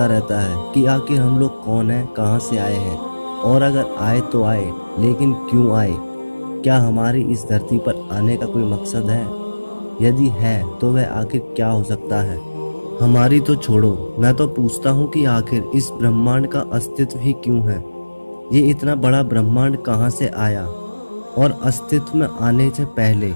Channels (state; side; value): inverted; both; correlation -1.00